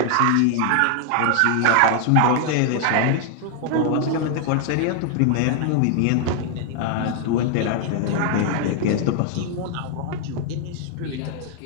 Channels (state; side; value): different; both; correlation 0.00